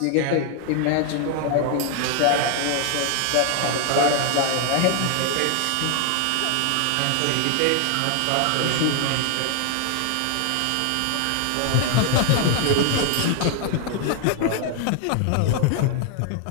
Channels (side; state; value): both; different; correlation 0.00